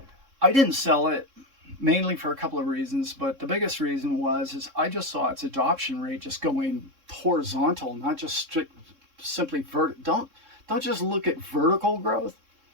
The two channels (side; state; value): left; late; 3.6 ms